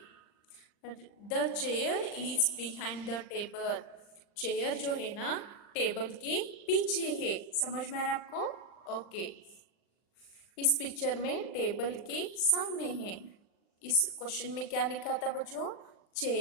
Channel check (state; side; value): late; right; 39 ms